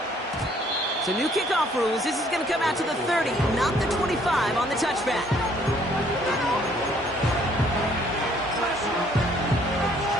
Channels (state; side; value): normal; both; correlation 0.62